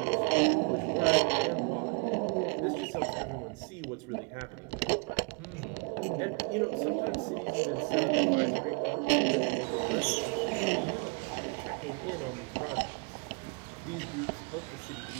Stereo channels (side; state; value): left; quieter; 35.4 dB